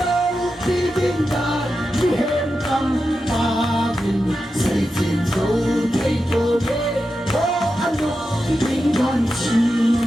đi tiếng đàn đi hết cầm ba mình sẽ trên dấu thấy tôi ô anh ô tiếng đàn chiu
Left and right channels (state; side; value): normal; both; correlation 0.90